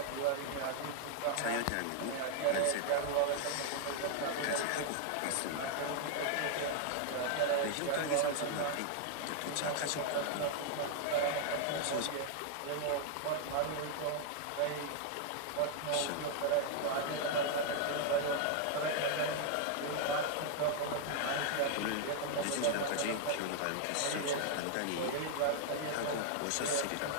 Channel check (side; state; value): both; different; correlation 0.00